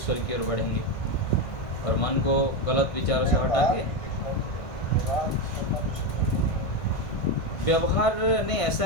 की ओर बढ़ेंगे और मन को गलत विचारों से हटा के व्यवहार नहीं,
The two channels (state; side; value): late; right; 1.5 ms